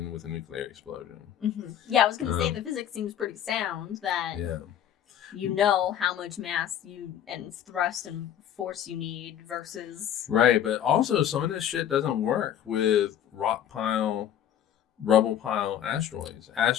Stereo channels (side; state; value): right; quieter; 10.1 dB